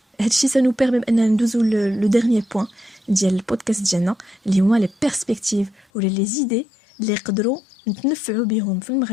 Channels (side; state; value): right; drops out; at 5.9 s